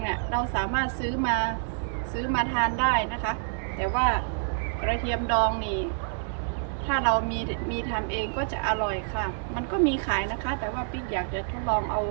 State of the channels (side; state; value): left; silent; digital silence